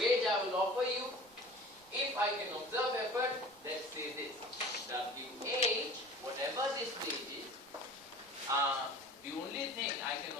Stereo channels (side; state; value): right; noise; rumble, 29 dB below the sound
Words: I will offer you? If I can observe effort, let's say this. WH, whatever this wage is, the only thing I can